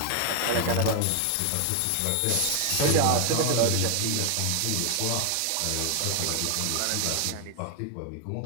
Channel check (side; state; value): both; different; correlation 0.01